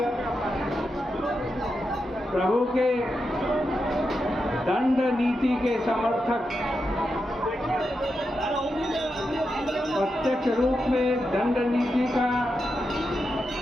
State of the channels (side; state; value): both; normal; correlation 0.87